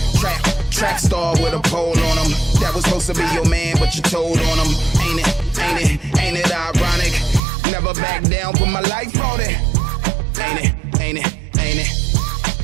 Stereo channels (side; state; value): left; drops out; at 7.4 s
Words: Track star with a pole on them. That was supposed to be your man, but you told on him. Ain't it ironic? Never back down, put my life on it. Ain't